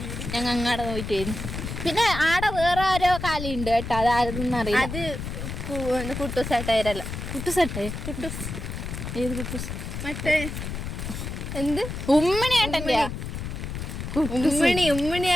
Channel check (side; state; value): left; noise; rumble, 6 dB below the sound